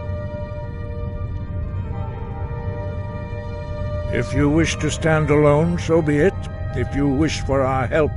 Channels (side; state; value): both; identical; correlation 1.00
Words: If you wish to stand alone, so be it. If you wish for our help,